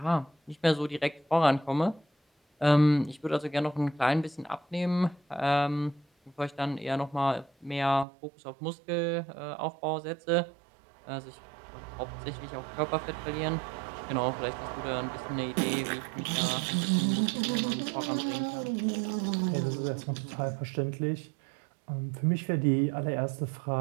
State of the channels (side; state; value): left; drops out; at 8.1 s